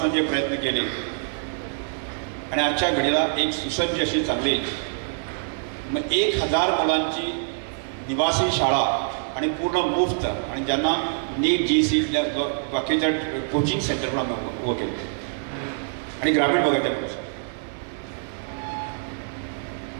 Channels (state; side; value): silent; left; digital silence